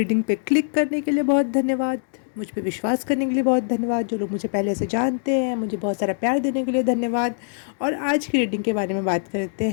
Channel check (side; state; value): right; silent; digital silence